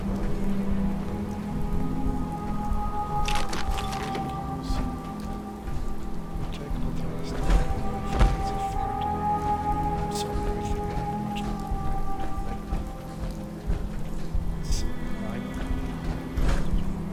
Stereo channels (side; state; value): both; identical; correlation 1.00